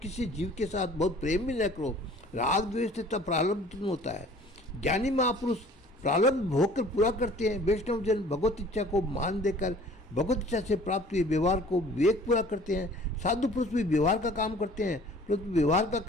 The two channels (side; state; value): both; normal; correlation 0.50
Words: जीव के साथ बहुत प्रेम भी न करो। राग द्वेष तथा प्रारब्ध उत्पन्न होता है। ज्ञानी महापुरुष प्रारब्ध भोग कर पूरा करते हैं। वैष्णव जन भगवत इच्छा को मान देकर भगवत इच्छा से प्राप्त हुए व्यवहार को विवेक पूरा करते हैं। साधु पुरुष भी व्यवहार का काम करते हैं, परंतु व्यवहार का